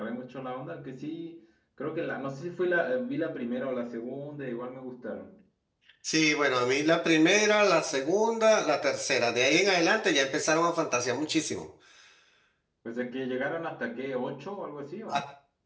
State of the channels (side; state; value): both; identical; correlation 1.00